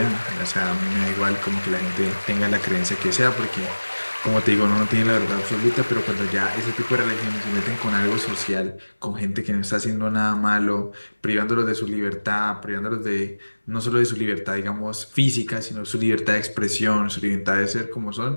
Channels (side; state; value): both; inverted; correlation -1.00